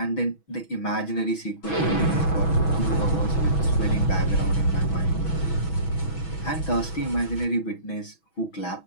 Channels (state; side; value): late; right; 6.1 ms